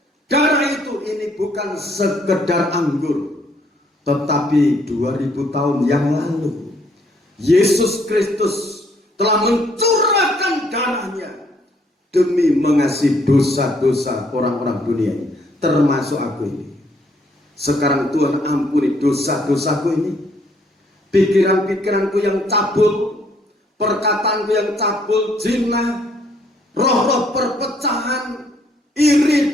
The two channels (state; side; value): normal; both; correlation 0.67